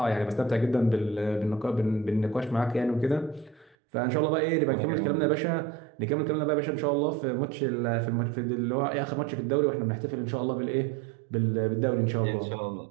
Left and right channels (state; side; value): drops out; left; at 3.8 s